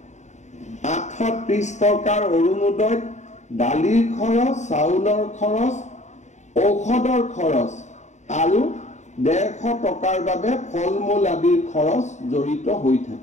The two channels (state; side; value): late; right; 0.34 ms